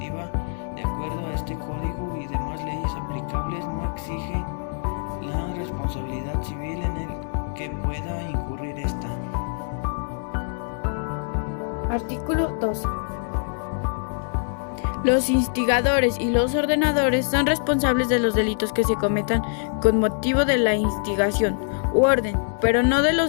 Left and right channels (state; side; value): silent; right; 62 dB below the other